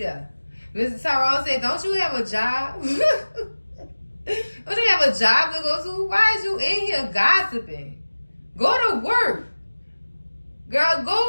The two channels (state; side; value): inverted; both; correlation -1.00